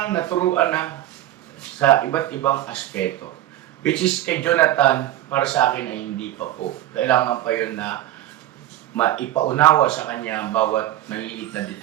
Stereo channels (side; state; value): left; quieter; 13.6 dB